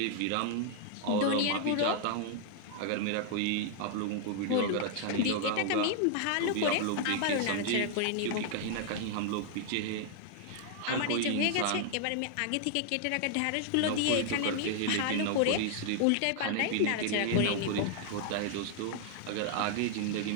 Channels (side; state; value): both; different; correlation 0.00